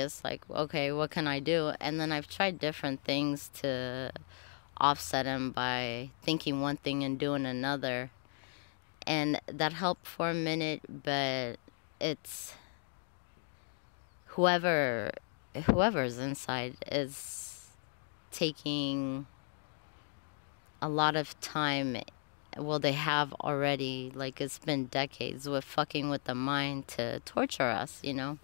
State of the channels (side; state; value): right; silent; 54 dB below the other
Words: like, okay, what can I do? And then I've tried different things to offset them by thinking one thing and doing another, and that helped for a minute. But it's whoever's inside is taking a lot of time. Well, they have already, like, it's been decades with fucking with the mind to torture us, you know.